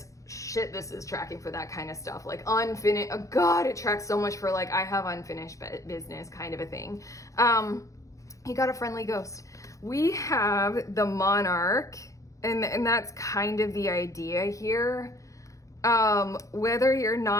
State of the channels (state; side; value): late; right; 0.16 ms